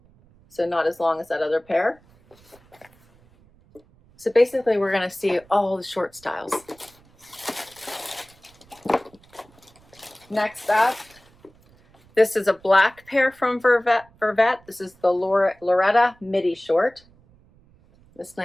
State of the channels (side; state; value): right; noise; rumble, 29 dB below the sound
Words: So not as long as that other pair. So basically we're going to see all the short styles. Next up, this is a black pair from Vervet. This is the Loretta Midi short. This